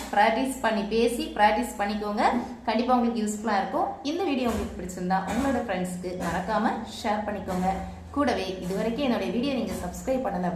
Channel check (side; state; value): both; identical; correlation 1.00